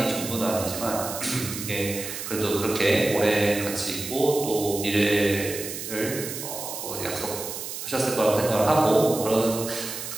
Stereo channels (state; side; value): noise; right; hiss, 7 dB below the sound